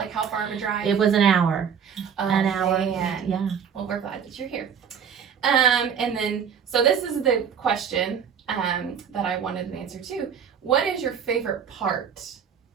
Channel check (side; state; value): left; quieter; 7.4 dB